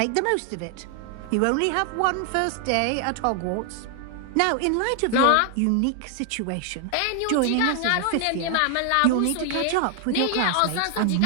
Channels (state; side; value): different; both; correlation 0.00